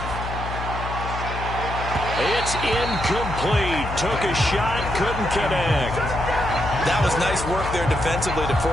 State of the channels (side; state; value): left; noise; hum, 7 dB below the sound